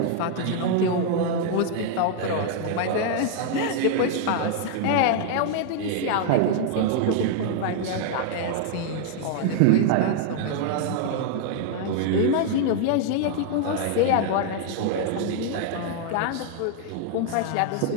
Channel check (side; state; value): both; different; correlation 0.00